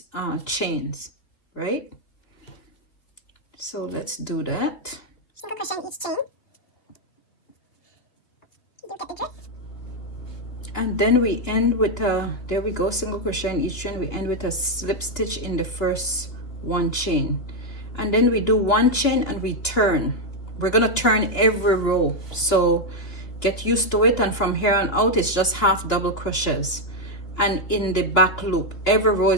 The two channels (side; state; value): right; late; 2.9 ms